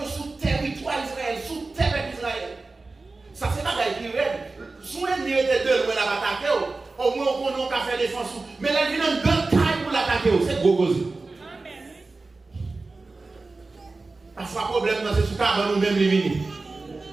sous territoire Israël, sous terre d'Israël. Ça, c'est pas qui raide. Sous l'ennemi était deux, on a attaqué. Au moins, on a fait défense. Mais là, il y a un grand taille pour l'attaquer. C'est gros gros. Parfois, le problème, c'est sous cabane nous-mêmes les vignes.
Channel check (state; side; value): quieter; left; 3.6 dB